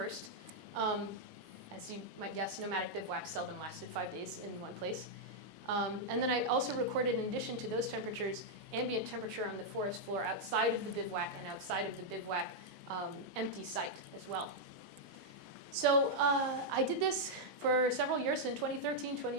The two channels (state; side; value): normal; both; correlation -0.04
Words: As you might guess, nomadic bivouacs seldom lasted 5 days in one place. And then I also recorded, in addition to those temperatures, ambient temperature on the forest floor outside of the bivouac and outside of the bivouac empty site as well. So I did this for several years in 2013,